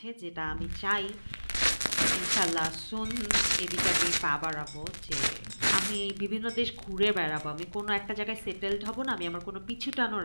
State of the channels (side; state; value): both; inverted; correlation -1.00